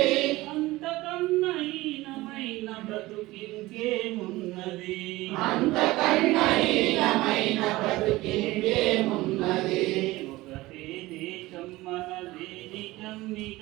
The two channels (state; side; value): quieter; left; 19.0 dB